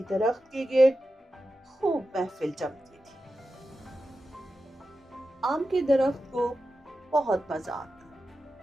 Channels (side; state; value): both; normal; correlation 0.92